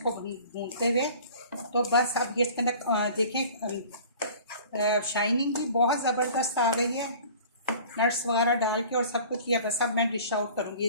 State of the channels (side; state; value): both; inverted; correlation -0.45